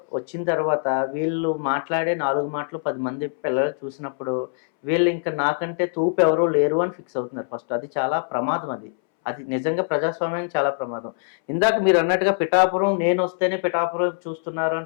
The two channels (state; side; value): silent; right; 63 dB below the other